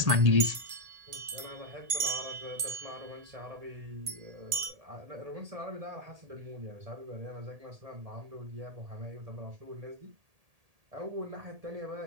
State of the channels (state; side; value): late; left; 1.8 ms